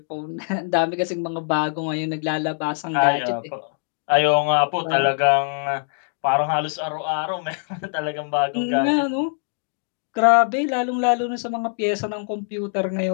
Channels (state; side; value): silent; right; 64 dB below the other